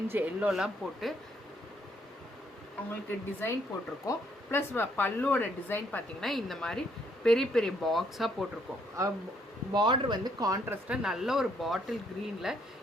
எல்லோலாம் போட்டு அவங்களுக்கு டிசைன் போட்டிருக்கோம். ப்ளஸ் பல்லுவோட டிசைன் பார்த்திங்கன்னா இந்த மாதிரி பெரிய பெரிய பாக்ஸாக போட்டிருக்கோம். பார்டர் கான்ட்ராஸ்டாக நல்ல ஒரு பாட்டில் க்ரீனில்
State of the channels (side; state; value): both; normal; correlation 0.70